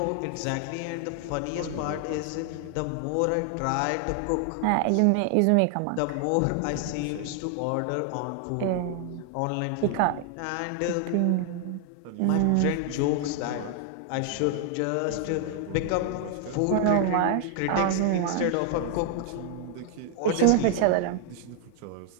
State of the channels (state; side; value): different; both; correlation 0.00